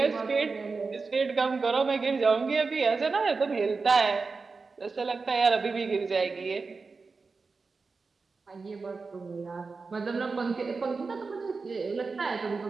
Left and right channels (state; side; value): quieter; left; 4.4 dB